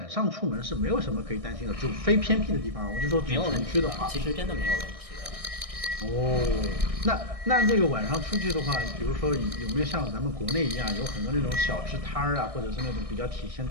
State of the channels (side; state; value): left; late; 1.6 ms